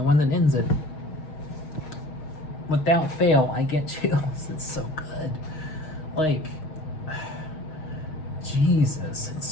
one that ends it, without fail I get chills. It's so good. Like, Jesus,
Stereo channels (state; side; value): late; right; 6.4 ms